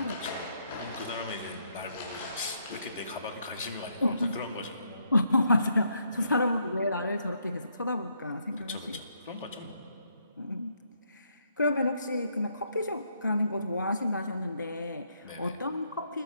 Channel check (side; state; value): both; inverted; correlation -0.74